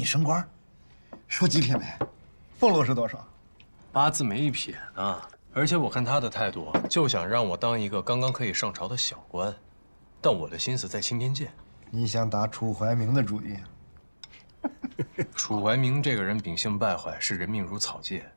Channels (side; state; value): both; inverted; correlation -1.00